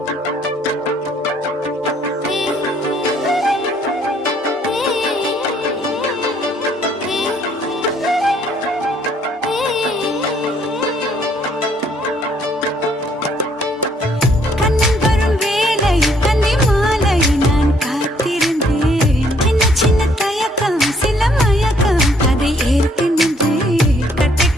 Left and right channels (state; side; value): normal; both; correlation 0.65